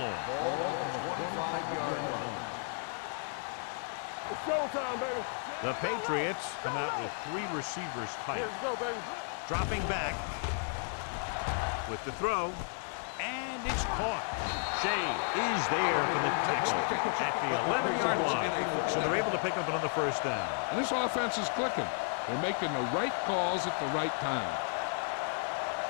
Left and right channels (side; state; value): right; silent; 56 dB below the other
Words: Ball on the 25-yard line. The Patriots come out with 3 receivers tight. Dropping back with the throw, and it's caught. Shea is there for the tackle at the 11-yard line. So they're able to pick up another first down. And this offense is clicking. They're making the right calls at the right time.